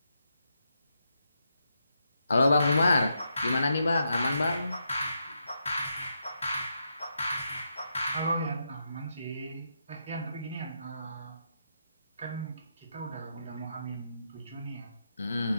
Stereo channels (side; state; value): both; inverted; correlation -0.82